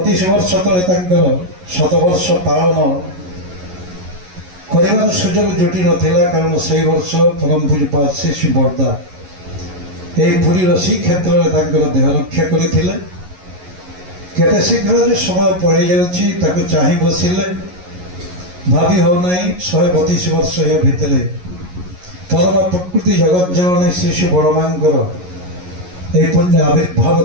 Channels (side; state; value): left; late; 11 ms